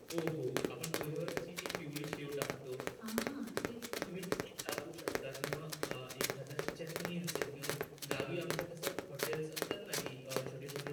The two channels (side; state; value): both; identical; correlation 1.00